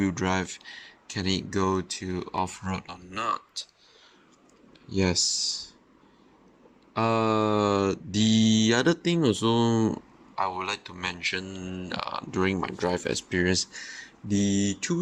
drive can it go to off-road or not. Yes. The other thing also I would like to mention during my drive experience, the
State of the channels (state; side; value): identical; both; correlation 1.00